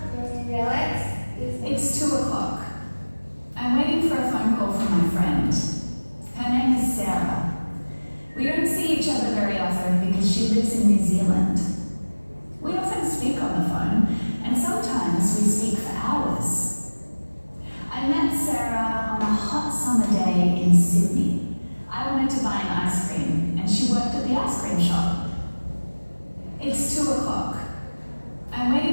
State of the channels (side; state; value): both; inverted; correlation -1.00